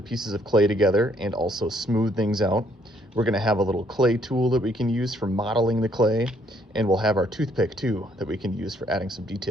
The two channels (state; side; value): normal; both; correlation 0.67